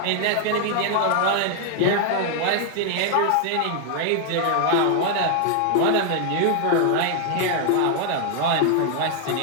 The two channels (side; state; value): both; different; correlation 0.00